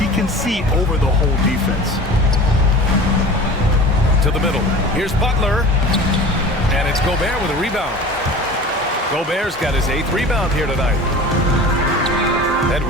can see over the whole defense. To the middle. Here's Butler. And it's Gobert with a rebound. Gobert's got his 8th rebound here tonight.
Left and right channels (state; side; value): normal; both; correlation 0.39